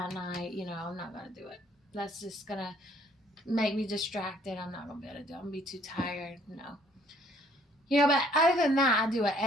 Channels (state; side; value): normal; both; correlation 0.62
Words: night. I'm not gonna do it. That's just gonna make me distracted. I'm not gonna be able to do it. I'm gonna be too tired. No. But other than that, I do it